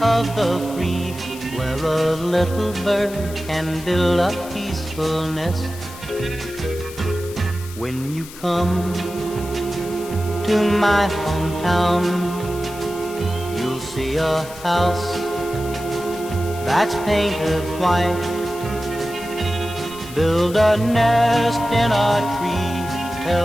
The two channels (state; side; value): noise; left; hiss, 16 dB below the sound